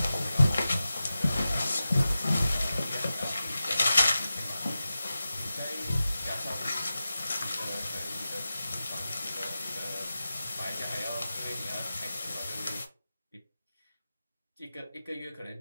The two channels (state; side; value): inverted; both; correlation -0.94